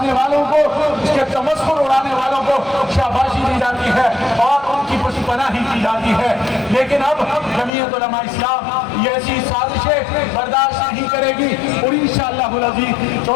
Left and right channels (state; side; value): drops out; right; at 7.7 s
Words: والوں کو، اس کے تمسخر اڑانے والوں کو شاباشی دی جاتی ہے اور ان کی پشت پناہی کی جاتی ہے۔ لیکن اب جمعیت علماء اسلام یہ ایسی سازشیں برداشت نہیں کرے گی، اور انشاءاللہ العزیز